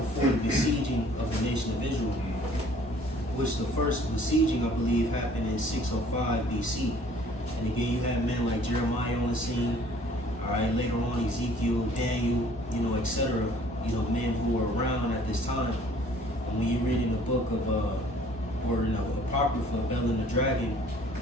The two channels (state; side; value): normal; both; correlation 0.55